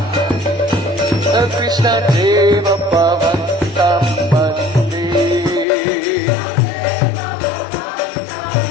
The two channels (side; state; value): right; drops out; at 5.7 s